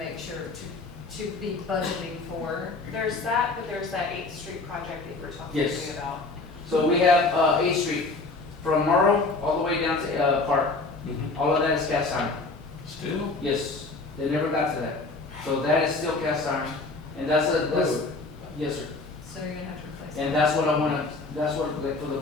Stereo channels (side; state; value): right; quieter; 3.5 dB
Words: sure to be budgeting for. There's that, but there's that 8th Street project that you were talking Yes. to me about. So we have, 8th Street, from Morrow all the way down to, Park. Mhm. All of that is cast iron. Still? Yes, they never got to that. So that is still cast iron. And that's, yes, sir. So you're gonna have to replace it. And that's what I wanna, that's what, like, for the